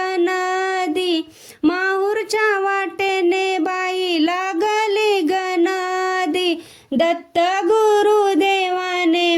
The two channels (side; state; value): both; identical; correlation 1.00